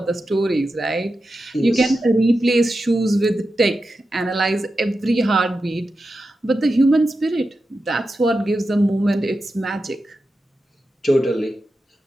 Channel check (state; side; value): normal; both; correlation 0.91